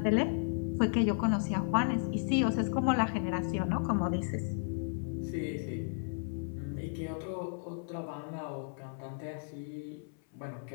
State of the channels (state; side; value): silent; right; 55 dB below the other